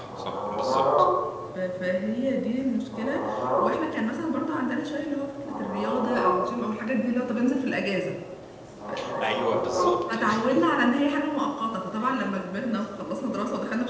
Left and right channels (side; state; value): both; identical; correlation 1.00